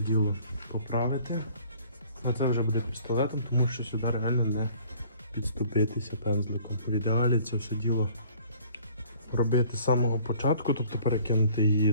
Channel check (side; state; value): both; inverted; correlation -0.55